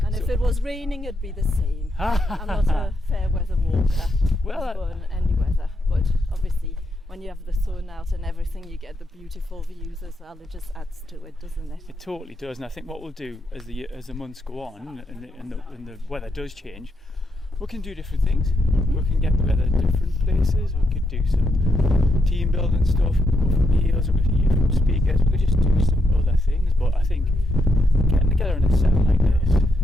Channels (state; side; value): normal; both; correlation 0.81